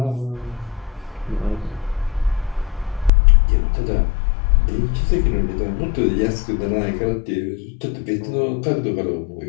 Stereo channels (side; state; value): right; drops out; at 3.1 s